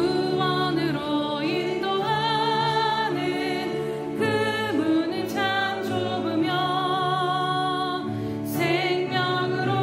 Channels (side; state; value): both; identical; correlation 1.00